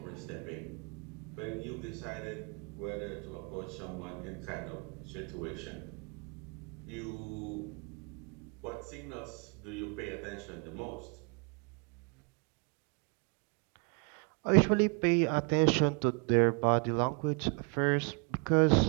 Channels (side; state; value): left; quieter; 35.8 dB